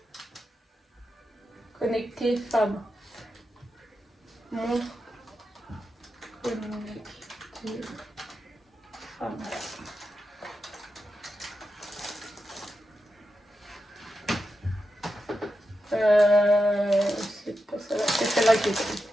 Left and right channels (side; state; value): both; normal; correlation 0.88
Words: Connecter femme. Montre. Connecter femme. C'est pas celle-là, c'est celle-là qui est prise.